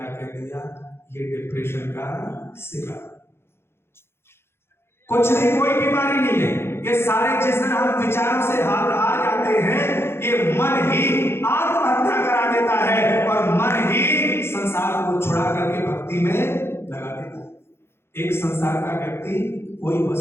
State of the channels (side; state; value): right; late; 0.12 ms